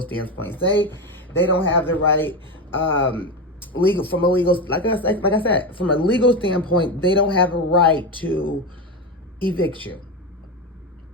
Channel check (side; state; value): both; normal; correlation 0.16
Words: standpoint, say they don't have the right, like I said, from a legal standpoint, they don't have a right to evict you.